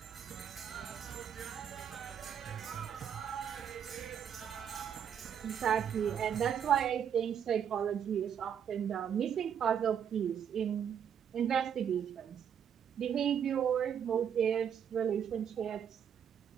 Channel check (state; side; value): quieter; left; 8.4 dB